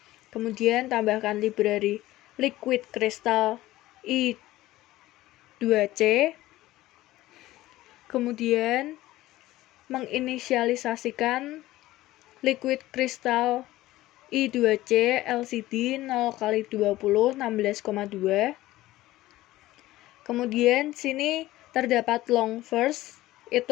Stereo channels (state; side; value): quieter; right; 16.5 dB